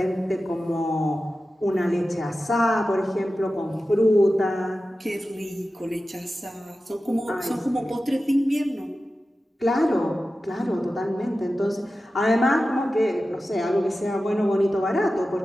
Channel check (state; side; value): normal; both; correlation 0.94